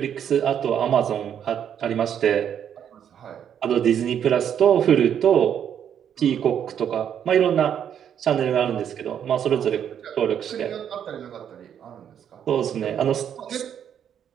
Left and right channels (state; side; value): quieter; left; 9.0 dB